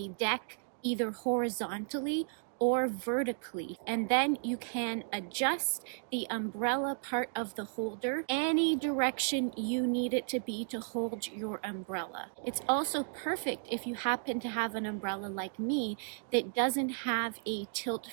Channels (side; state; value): left; silent; digital silence